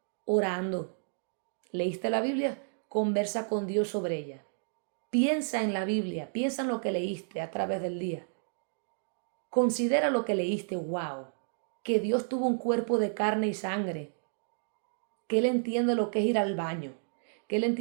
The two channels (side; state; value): left; silent; digital silence